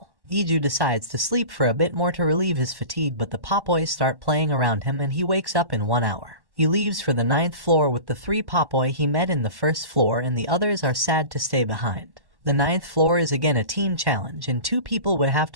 Iju decides to sleep for a bit more to relieve his fatigue, but the Popoi start playing around him and he wakes up in 1 hour. He leaves for the 9th floor with the 3 Popoi he met in the 1st floor, and the others are sad to stay behind. The 9th floor is again a team challenge, and 2 people would have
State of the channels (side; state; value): left; late; 1.1 ms